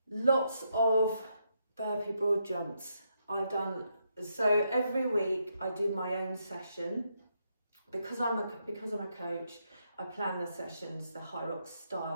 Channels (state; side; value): inverted; both; correlation -0.79